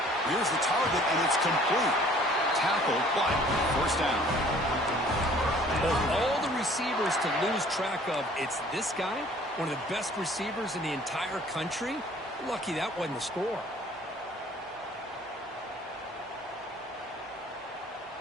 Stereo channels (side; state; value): both; normal; correlation 0.54